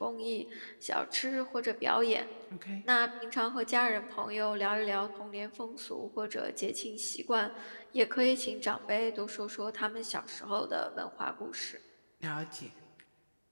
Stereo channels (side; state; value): both; inverted; correlation -1.00